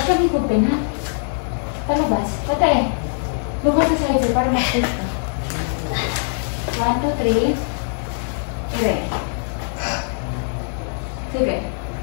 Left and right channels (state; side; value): silent; right; digital silence